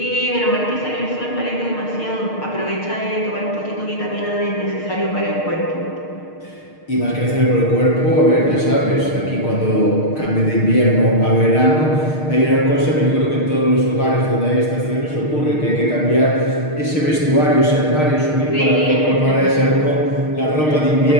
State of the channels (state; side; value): late; right; 6.5 ms